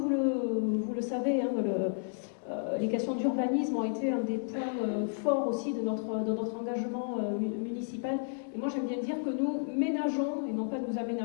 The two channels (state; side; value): silent; right; digital silence